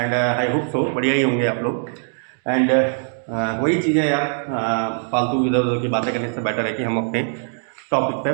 आई होप सो बढ़िया ही होंगे आप लोग। एंड वही चीज़ें यार, फालतू इधर उधर की बातें करने से बेटर है कि हम अपने टॉपिक पे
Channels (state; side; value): silent; left; digital silence